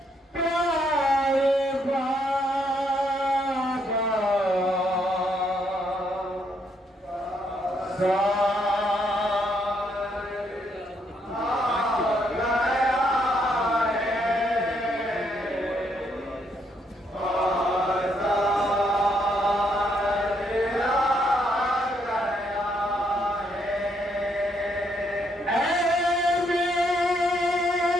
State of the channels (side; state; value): both; normal; correlation 0.74